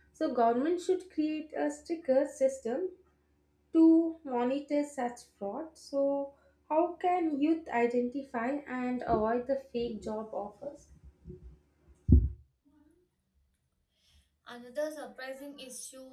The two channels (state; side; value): identical; both; correlation 1.00